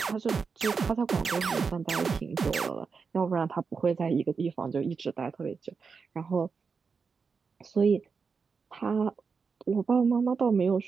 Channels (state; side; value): quieter; left; 5.2 dB